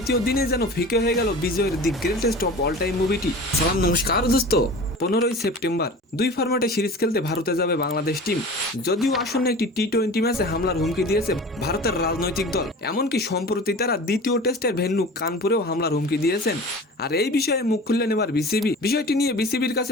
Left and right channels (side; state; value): both; normal; correlation 0.38